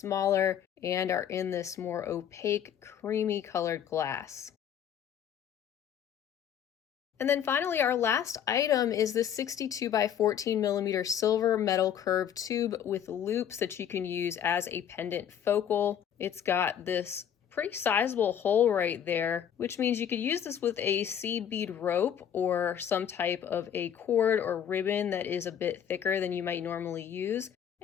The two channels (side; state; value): right; quieter; 9.2 dB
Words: and are in this more opaque, creamy colored glass. And then finally, our last item is this 62 by 14mm silver metal curved tube with loops that you can use as a pendant focal. It's got this pretty sizable hole right there, which means you could use this with a seed bead rope or some type of a cord or ribbon that is a bit thicker than you might normally use,